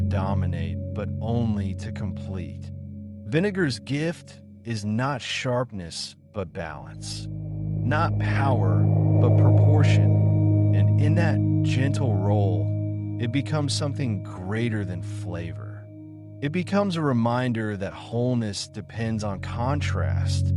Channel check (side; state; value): both; identical; correlation 1.00